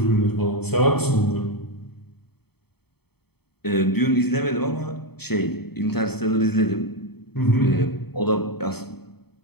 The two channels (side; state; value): right; late; 0.97 ms